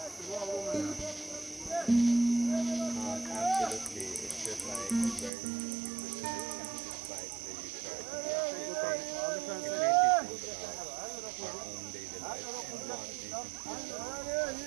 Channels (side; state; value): left; drops out; at 5.3 s